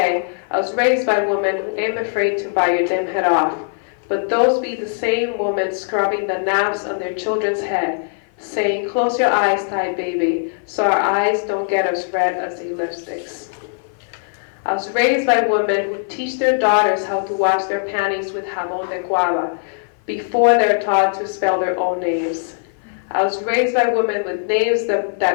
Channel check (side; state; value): right; silent; 56 dB below the other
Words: I was raised by women who ain't afraid to bite your damn head off, but those be the same women scrubbing the knobs on their children's head, saying, close your eyes tight, baby, so our eyes don't get as red as the lipsticks. I was raised by women who teach their daughters how to wash their panties with jabón de guava before they're taught to spell their own names. I was raised by women with names